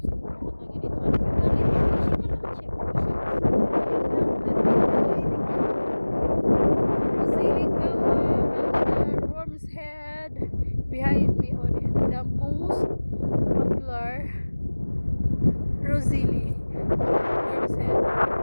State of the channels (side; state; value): both; inverted; correlation -1.00